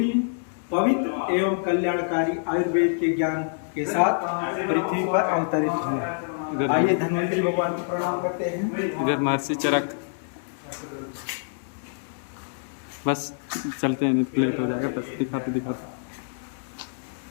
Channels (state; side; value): silent; right; digital silence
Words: पवित्र एवं कल्याणकारी आयुर्वेद के ज्ञान के साथ पृथ्वी पर अवतरित हुए। आइए धन्वंतरी भगवान को प्रणाम करते हैं। इधर महर्षि चरक। बस चलते हैं, नहीं तो लेट हो जाएगा। बस दिखाते